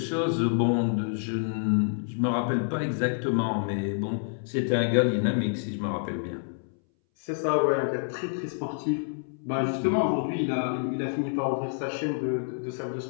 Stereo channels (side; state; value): right; silent; 59 dB below the other